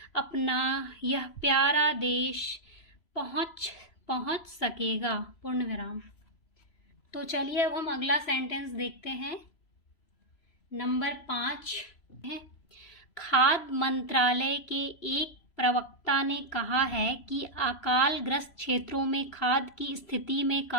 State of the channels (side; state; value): right; late; 3.0 ms